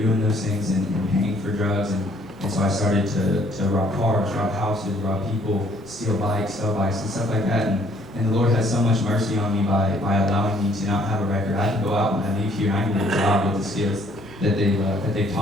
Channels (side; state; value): both; normal; correlation 0.62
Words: those things and paying for drugs. And so I started to rob cars, rob houses, rob people, steal bikes, sell bikes, and stuff like that. And the Lord had so much mercy on me by allowing me to not have a record. I can go out when I leave here and I can get a job with the skills that they